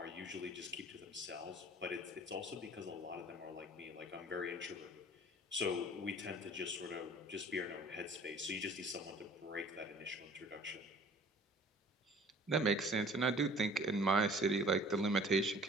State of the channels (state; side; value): normal; both; correlation 0.49